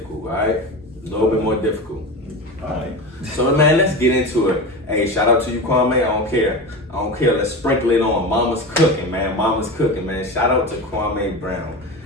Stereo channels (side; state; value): both; normal; correlation 0.26